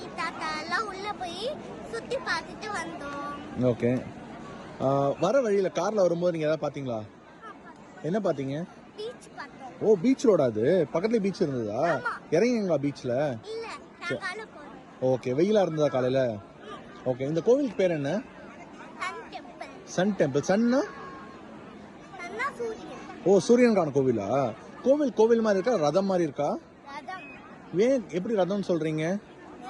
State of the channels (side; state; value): both; identical; correlation 1.00